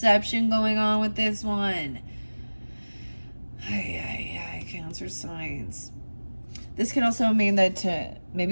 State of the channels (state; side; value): inverted; both; correlation -1.00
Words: going on with this one. Cancer signs. This could also mean that